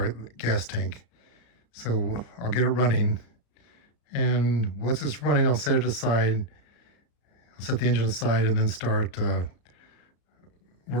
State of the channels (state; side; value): late; right; 34 ms